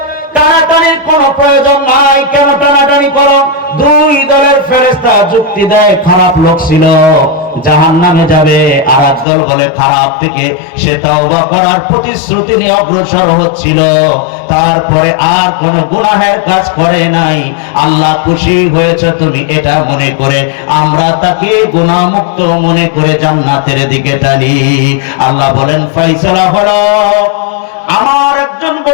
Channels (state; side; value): drops out; right; at 9.2 s